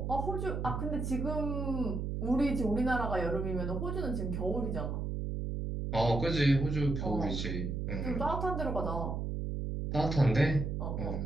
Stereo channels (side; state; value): right; noise; hum, 2 dB below the sound